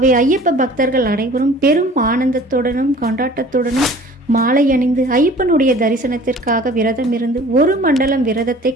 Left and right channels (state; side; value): normal; both; correlation 0.47